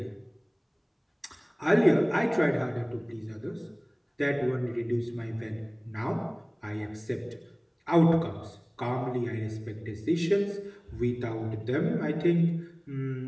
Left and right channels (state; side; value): identical; both; correlation 1.00